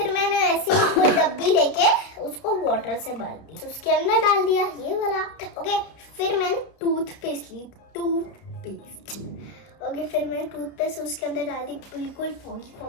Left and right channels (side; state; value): right; late; 31 ms